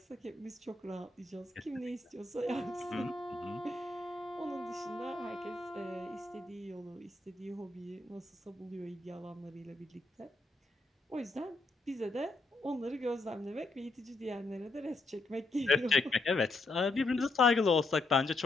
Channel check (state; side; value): quieter; right; 3.1 dB